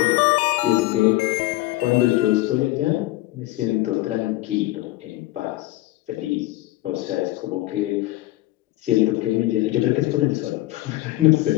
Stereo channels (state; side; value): quieter; right; 17.8 dB